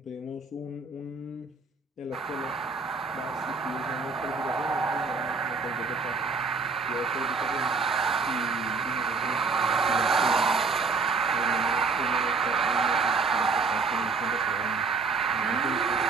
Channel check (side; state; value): left; quieter; 4.5 dB